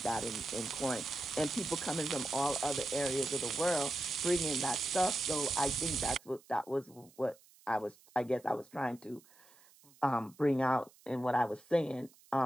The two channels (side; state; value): right; noise; hiss, 27 dB below the sound